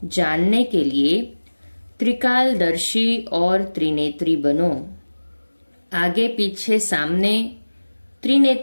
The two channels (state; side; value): inverted; both; correlation -1.00